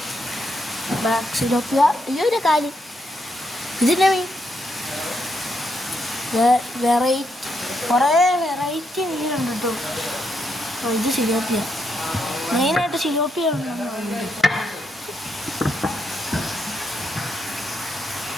ബ്ലാക്ക് സിലോപ്പിയ. ഒരു കാലി. ഇതിൻ്റെ മീൻ കുറേ വെറൈറ്റി മീനുണ്ട് കേട്ടോ. ഇത് സിലോപ്പിയ. മെയിനായിട്ട് സിലോപ്പിയ ഉണ്ടെന്ന് തോന്നുന്നുണ്ട്.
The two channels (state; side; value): normal; both; correlation 0.79